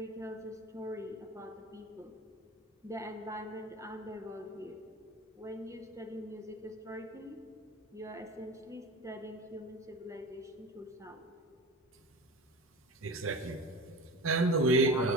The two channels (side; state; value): both; normal; correlation 0.33